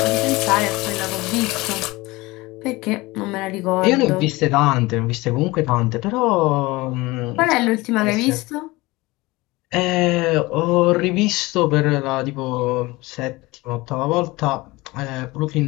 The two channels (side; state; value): right; quieter; 21.5 dB